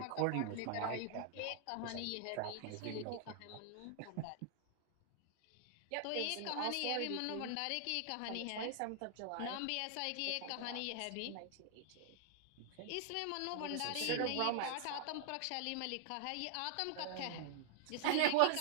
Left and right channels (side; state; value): both; different; correlation -0.01